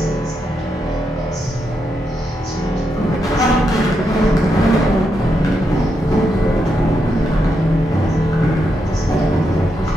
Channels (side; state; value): both; normal; correlation 0.83